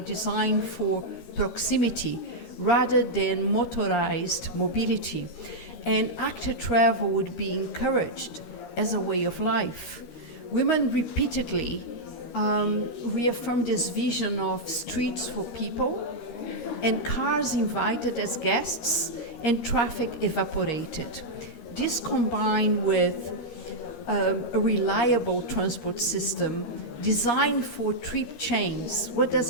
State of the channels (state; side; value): late; right; 13 ms